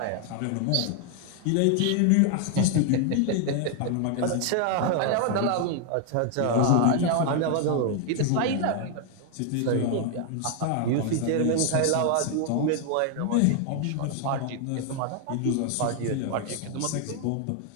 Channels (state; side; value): different; both; correlation 0.00